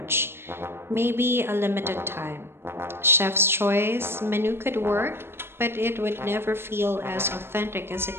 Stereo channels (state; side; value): late; left; 0.11 ms